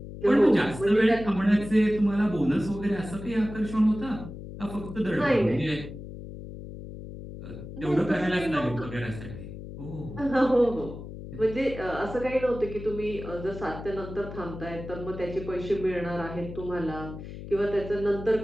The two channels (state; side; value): noise; left; hum, 11 dB below the sound